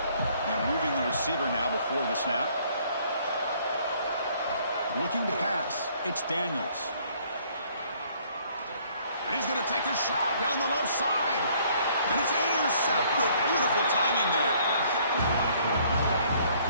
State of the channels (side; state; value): both; inverted; correlation -0.61